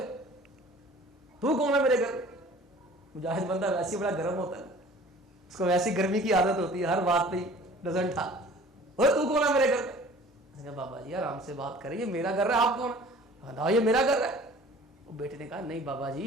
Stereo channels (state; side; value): normal; both; correlation 0.48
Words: تو کون ہے میرے گھر؟ مجاہد بندہ ویسے بڑا گرم ہوتا ہے، اس کو ویسی گرمی کی عادت ہوتی ہے، ہر بات پہ ڈزنٹ تھا. تو کون ہے میرے گھر میں؟ بابا جی آرام سے بات کریں، یہ میرا گھر ہے، آپ کون ہے؟ یہ میرا گھر ہے. وہ بیٹے نے کہا نہیں بابا